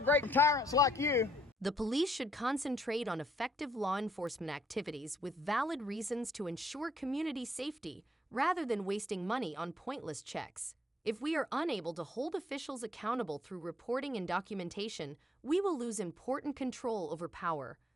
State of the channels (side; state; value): both; normal; correlation 0.70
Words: great tyrants like you. The police should concentrate on effective law enforcement activities with valid reasons to ensure community safety rather than wasting money on pointless checks. If we are unable to hold officials accountable through reporting and documentation, we will lose important control over power.